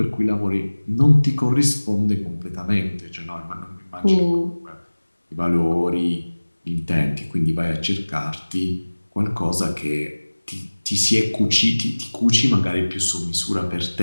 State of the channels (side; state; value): both; inverted; correlation -1.00